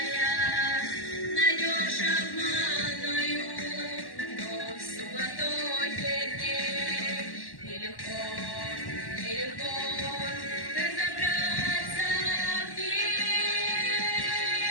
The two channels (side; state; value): right; late; 1.1 ms